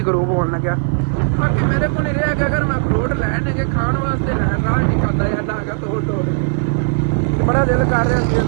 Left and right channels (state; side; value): silent; left; 58 dB below the other